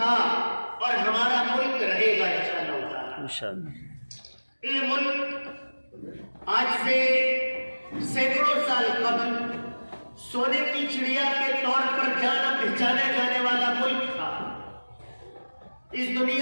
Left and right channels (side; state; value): both; inverted; correlation -1.00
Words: اور ہمارا ملک رہے گا انشاءاللہ۔ یہ ملک آج سے سینکڑوں سال قبل سونے کی چڑیا کے طور پر جانا پہچانا جانے والا ملک تھا۔ اس